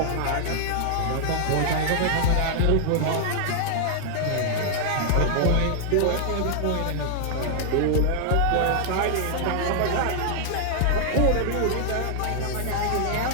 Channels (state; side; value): different; both; correlation 0.00